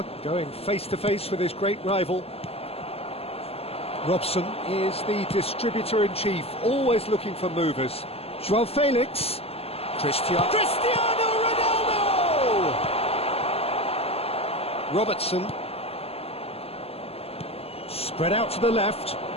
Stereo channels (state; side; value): late; right; 0.29 ms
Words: going face-to-face with his great rival. Robson is the distributor-in-chief, always looking for movers. Joao Felix. Cristiano Ronaldo! Robertson. Spread out to the left.